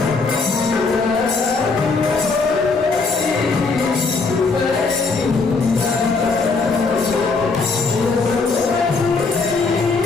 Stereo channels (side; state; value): right; quieter; 4.1 dB